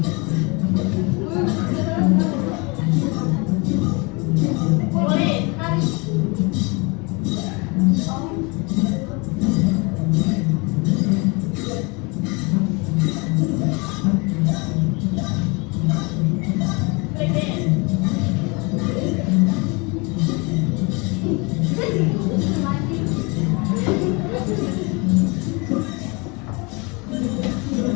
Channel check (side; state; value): right; quieter; 29.0 dB